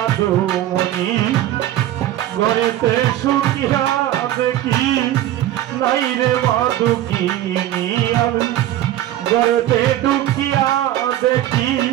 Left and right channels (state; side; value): quieter; left; 13.3 dB